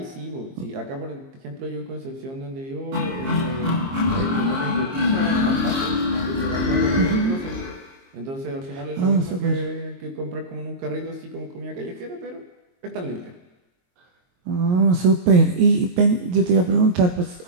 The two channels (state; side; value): late; left; 22 ms